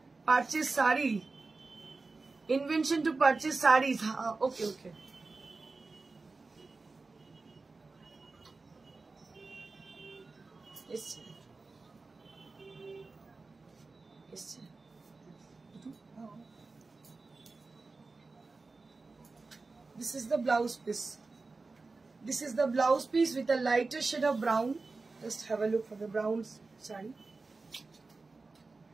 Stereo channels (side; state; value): left; quieter; 3.8 dB